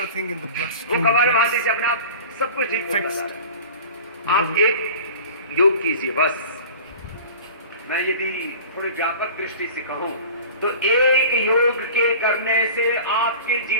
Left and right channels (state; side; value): inverted; both; correlation -0.39